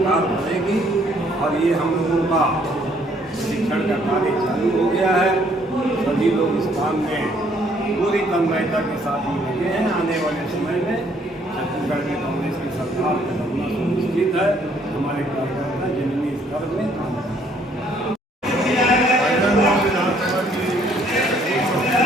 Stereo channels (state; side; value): normal; both; correlation 0.65